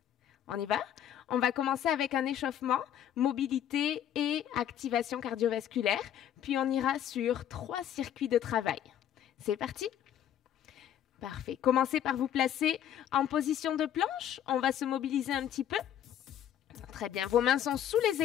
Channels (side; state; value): right; quieter; 10.3 dB